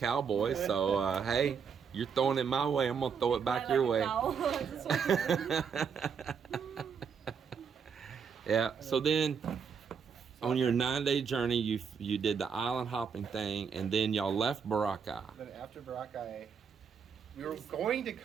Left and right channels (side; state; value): left; quieter; 6.5 dB